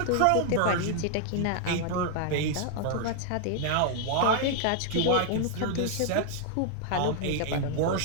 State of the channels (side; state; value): both; different; correlation 0.00